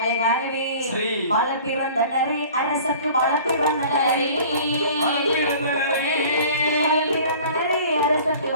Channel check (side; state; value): both; inverted; correlation -0.46